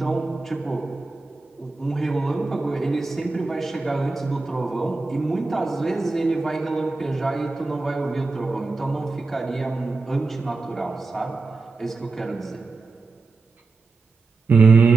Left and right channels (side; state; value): left; quieter; 3.8 dB